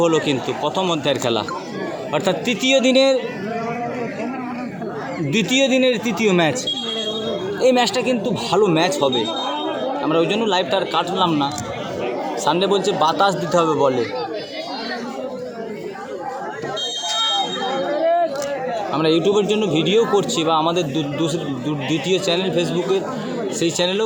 হলো কিন্তু প্রথম অধ্যায়ের খেলা, অর্থাৎ দ্বিতীয় দিনের তৃতীয় ম্যাচ। এই ম্যাচটা কিন্তু ভালো ম্যাচ হবে, আমরা ওই জন্য লাইভটা আর কাটলাম না। সানডে বলছে বাতাস দিতে হবে বলে, আমরা ইউটিউবের জন্য ভিডিও করছি বা আমাদের দ্বিতীয় চ্যানেল ফেসবুকের, সেই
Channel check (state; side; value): identical; both; correlation 1.00